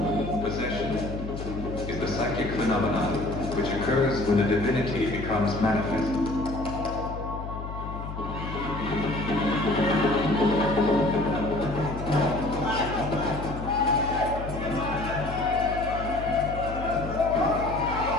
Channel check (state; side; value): noise; left; hum, 8 dB below the sound